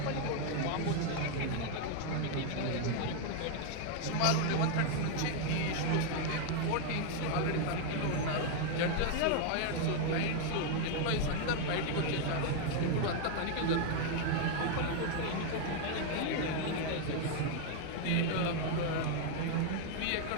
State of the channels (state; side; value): different; both; correlation 0.00